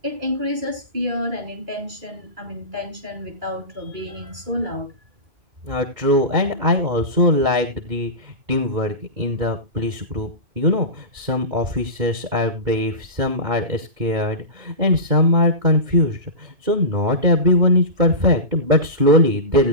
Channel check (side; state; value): left; late; 2.2 ms